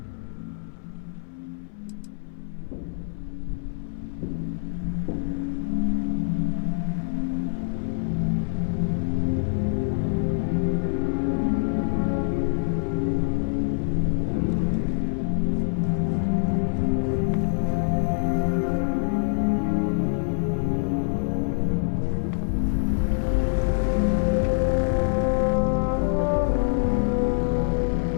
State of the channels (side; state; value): right; silent; 60 dB below the other